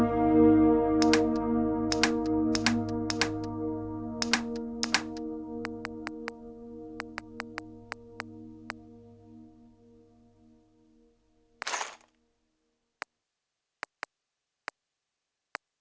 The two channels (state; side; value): identical; both; correlation 1.00